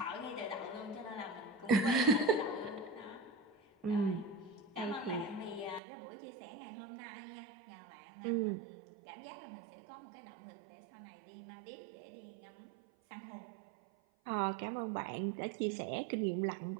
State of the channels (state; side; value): drops out; left; at 5.8 s